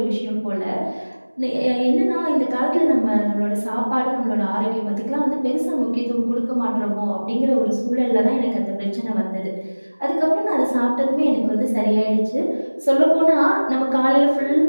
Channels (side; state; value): both; inverted; correlation -1.00